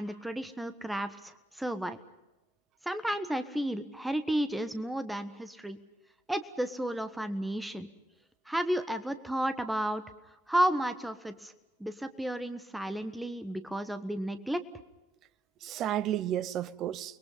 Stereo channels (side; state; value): both; normal; correlation 0.87